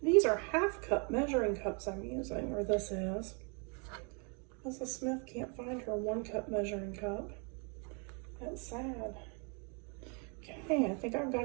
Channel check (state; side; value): quieter; left; 35.9 dB